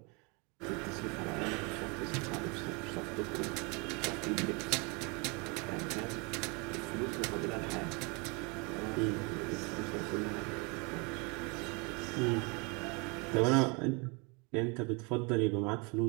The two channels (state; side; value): quieter; left; 30.8 dB